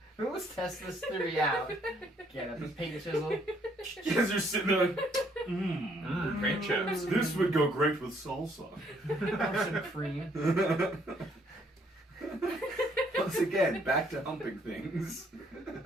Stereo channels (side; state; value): both; normal; correlation 0.67